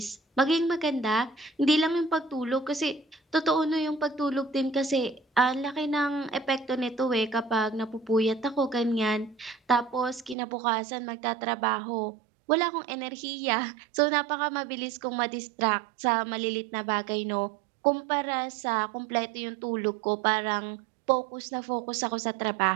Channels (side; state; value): left; drops out; at 10.4 s